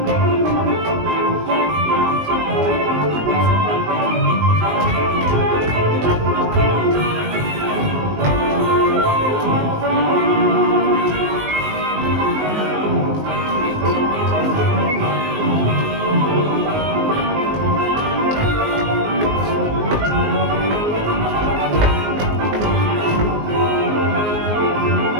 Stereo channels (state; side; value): late; left; 19 ms